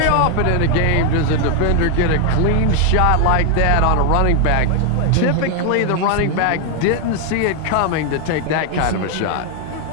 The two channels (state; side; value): different; both; correlation 0.01